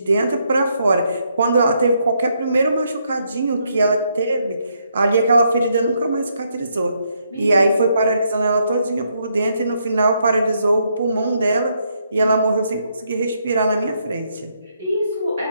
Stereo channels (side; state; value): both; inverted; correlation -0.75